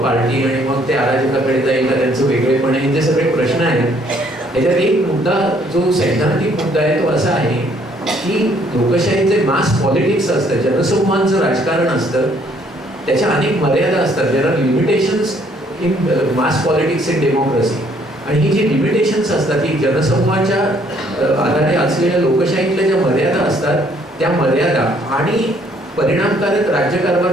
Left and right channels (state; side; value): normal; both; correlation 0.64